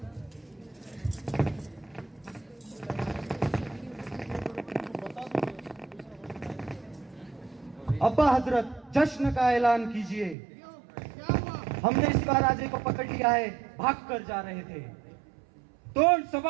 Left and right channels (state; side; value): drops out; left; at 10.4 s